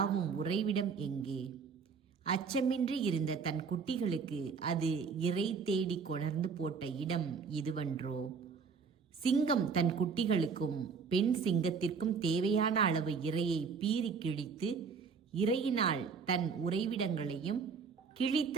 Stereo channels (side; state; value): left; quieter; 5.6 dB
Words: உறைவிடம் எங்கே? அச்சமின்றி இருந்த தன் குட்டிகளுக்கு அது இரை தேடி கொணர்ந்து போட்ட இடம் இதுவன்றோ? சிங்கம் தன் குட்டிகளுக்கும் பெண் சிங்கத்திற்கும் தேவையான அளவு இரையை பீறி கிழித்து, இரையினால் தன் உறைவிடங்களையும்